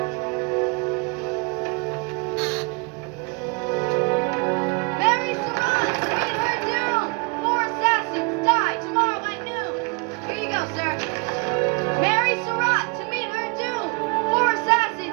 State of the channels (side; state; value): left; quieter; 30.2 dB